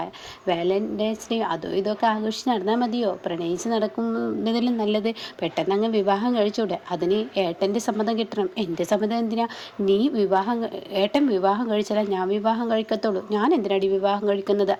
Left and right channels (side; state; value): both; identical; correlation 1.00